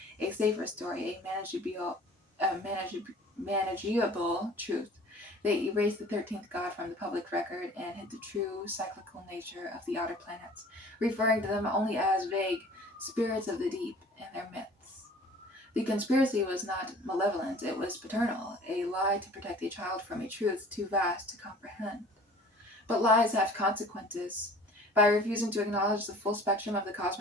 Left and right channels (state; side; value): normal; both; correlation 0.47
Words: a safer story, a manageable truth. They erased the 13th god from the public record and hid the true cyclical nature of the outer planets, referring to them only as vague spirits of the deep and their myths. The conspiracy was not malevolent, it was paternal, a lie to protect a child from a truth too vast to comprehend. But lies have consequences. By refusing to acknowledge the full spectrum of the